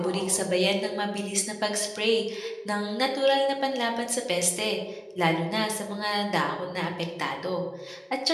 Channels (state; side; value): identical; both; correlation 1.00